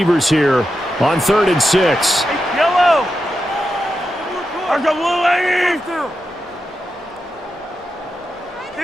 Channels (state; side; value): normal; both; correlation 0.88